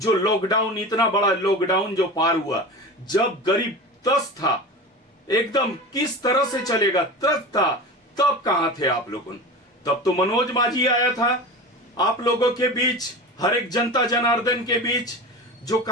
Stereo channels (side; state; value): both; normal; correlation 0.30